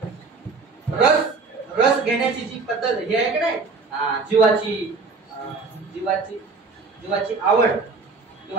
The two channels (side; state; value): left; quieter; 4.2 dB